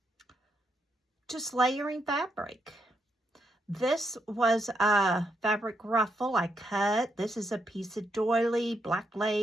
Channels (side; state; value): both; normal; correlation 0.79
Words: just layering fabric. This was a fabric ruffle I cut. This is a piece of doily, black